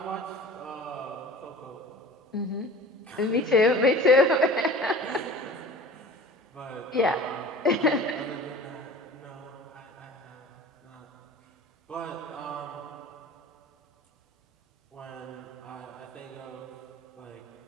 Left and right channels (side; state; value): both; normal; correlation 0.41